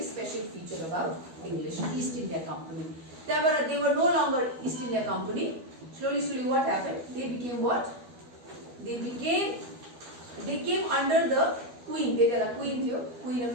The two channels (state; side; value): late; left; 12 ms